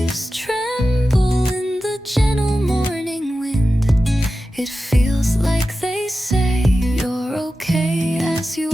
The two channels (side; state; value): both; normal; correlation 0.93